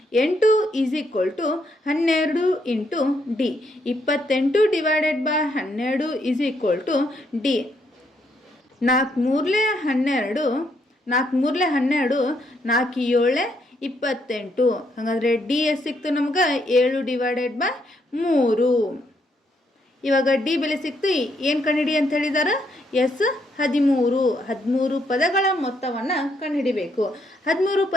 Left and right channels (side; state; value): both; normal; correlation 0.74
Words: is equal to 12 into D. 28 divided by 12 is equal to D. 4 3 12, 4 3 12, 4 7 28. ಹಾಗಾದರೆ ಡಿ ಎಷ್ಟು ಸಿಕ್ತು ನಮ್ಗೆ? 7 ಡಿವೈಡೆಡ್ ಬೈ 3. ಇವಾಗ ಡಿ ಬೆಲೆ ಸಿಕ್ತು. ಏನು ಕಂಡುಹಿಡಿ ಅಂತ ಹೇಳಿದಾರೆ? ಎಸ್ 13 ಪದಗಳ ಮೊತ್ತವನ್ನು ಕಂಡುಹಿಡಿಬೇಕು. 13